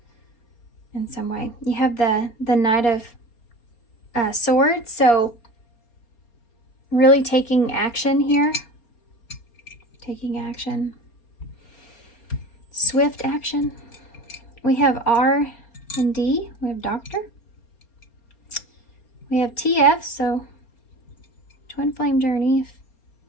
in some way. You have the Knight of Swords, so really taking action here. Taking action. Swift action. We have R and D. We have Doctor. We have TF, so Twin Flame Journey,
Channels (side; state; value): right; late; 4.3 ms